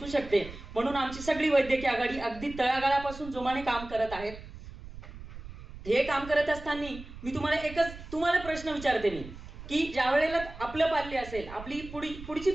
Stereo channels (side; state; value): right; noise; rumble, 14 dB below the sound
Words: शकते. म्हणून आमची सगळी वैद्यकीय आघाडी अगदी तळागाळापासून जोमाने काम करत आहेत. हे काम करत असताना मी तुम्हाला प्रश्न विचारते मी की ज्या वेळेला आपलं पाल्य असेल, आपली पुढची